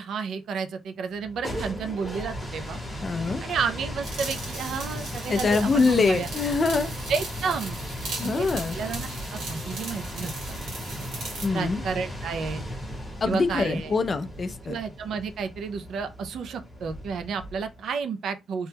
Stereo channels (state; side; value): normal; both; correlation 0.77